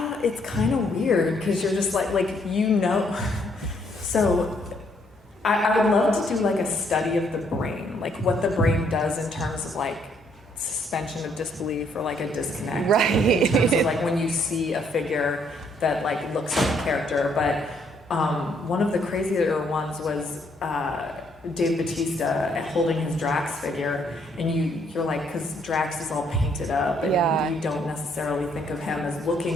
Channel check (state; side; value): normal; both; correlation 0.69